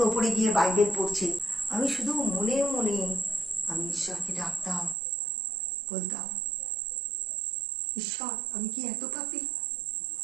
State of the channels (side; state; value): left; drops out; at 5.0 s